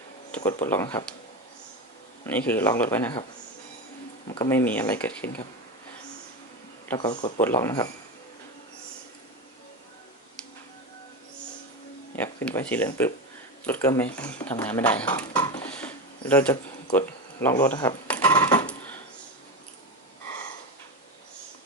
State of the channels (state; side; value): normal; both; correlation 0.18